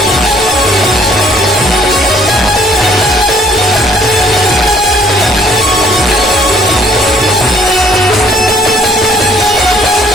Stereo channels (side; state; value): both; normal; correlation 0.61